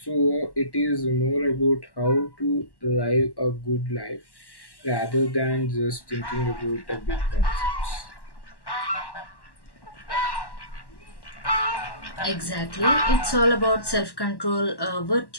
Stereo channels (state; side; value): late; right; 1.1 ms